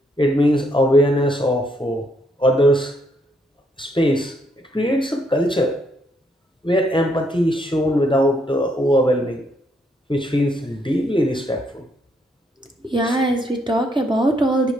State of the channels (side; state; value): both; normal; correlation 0.73